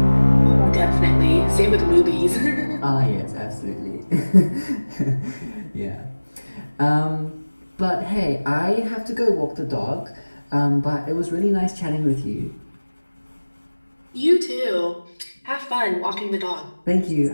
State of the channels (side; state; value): both; inverted; correlation -1.00